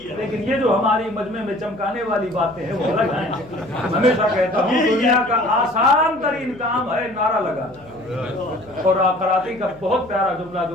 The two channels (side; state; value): left; noise; hum, 24 dB below the sound